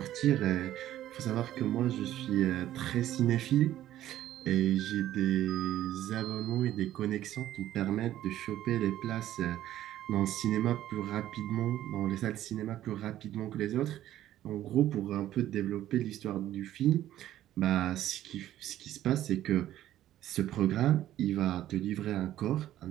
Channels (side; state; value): left; quieter; 13.0 dB